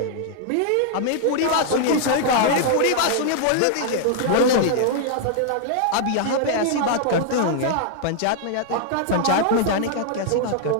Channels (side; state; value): both; different; correlation -0.01